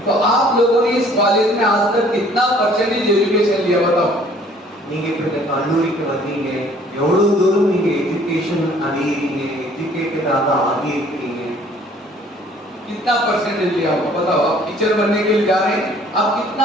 तो आप लोगों ने इस कॉलेज में आज तक कितना परसेंटेज एजुकेशन लिया बताओ? நீங்க இப்ப இந்த கல்லூரிக்கு வந்தீங்க, எவ்வளவு தூரம் நீங்க எஜுகேஷன் அடையறீங்க, எஜுகேட்டடாக ஆகி இருக்கீங்க? कितना परसेंटेज लिया होगा बताओ? आप टीचर बनने के लिए जा रहे हैं, आप कितना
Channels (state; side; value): normal; both; correlation 0.56